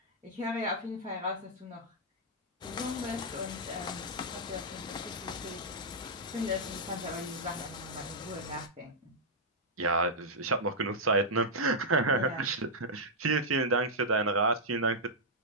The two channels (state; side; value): normal; both; correlation -0.06